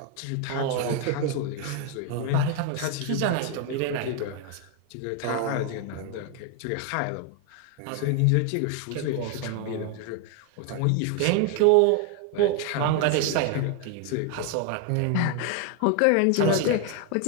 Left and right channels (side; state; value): both; different; correlation 0.01